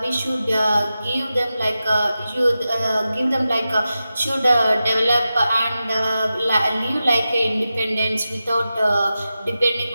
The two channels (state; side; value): inverted; both; correlation -0.92